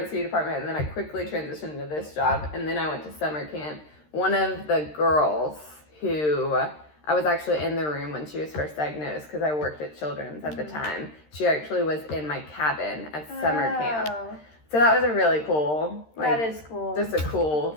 department, and then I quickly transitioned to this job, and then I went to summer camp, one of the girls who... I was actually in the room when she was first diagnosed because I worked at Children's at the time. She actually was in my cabin at summer camp. So that was a really cool, that is cool. Just a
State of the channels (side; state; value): right; late; 13 ms